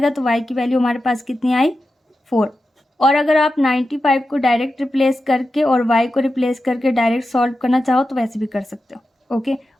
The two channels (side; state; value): both; normal; correlation 0.91